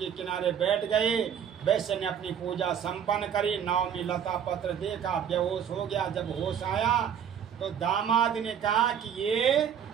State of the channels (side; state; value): left; quieter; 8.5 dB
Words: किनारे बैठ गए। वैश्य ने अपनी पूजा संपन्न करी। नाव में लता पत्र देखा, बेहोश हो गया। जब होश आया तो दामाद ने कहा कि ये